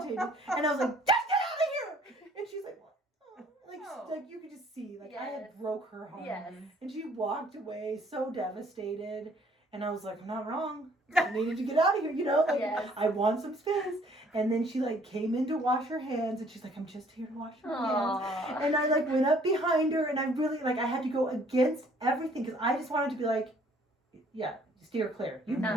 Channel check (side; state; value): both; normal; correlation 0.60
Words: And I was like, just get out of here. And she's like, what? Oh. Oh. Like you could just see, like I Yes. had broke her heart. Yes. And she walked away so devastated. And I was like, I'm not wrong. I needed to get out of here, you know? Like, Yes. I want some space. And then she, like, came in to wash her hands. And she's like, I'm just here to wash your hands. Aww. And I, like, went up behind her. And I really, like, I had to go against everything. Because I just wanted to be like, yeah, steer clear. You're